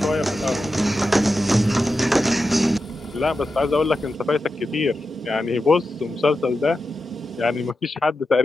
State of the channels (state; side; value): normal; both; correlation 0.90